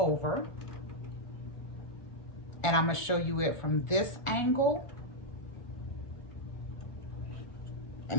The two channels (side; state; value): right; late; 1.4 ms